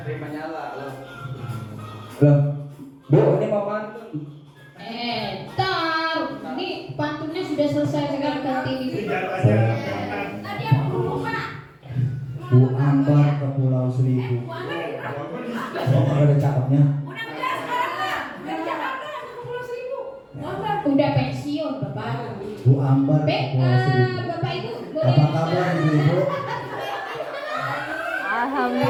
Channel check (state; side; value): identical; both; correlation 1.00